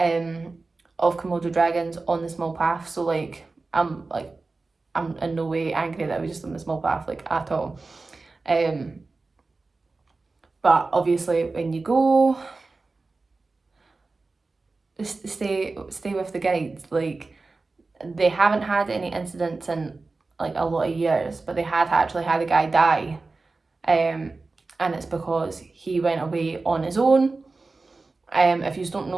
Komodo dragons on the small path, so like I'm in no way angry that we just on the small path, like, at all. But obviously when you go, stay with the guides. Like, they haven't had any incidents in like a lot of years, but they had actually had a guy die, and it's because he went away on his own. If you don't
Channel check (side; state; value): left; quieter; 3.7 dB